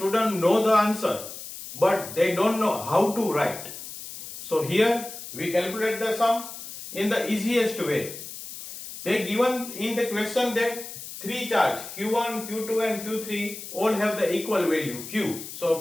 know the answer, but they don't know how to write. So here we calculate the sum in the easiest way. They given in the question that three charge Q1, Q2 and Q3 all have the equal value Q.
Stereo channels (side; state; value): left; noise; hiss, 11 dB below the sound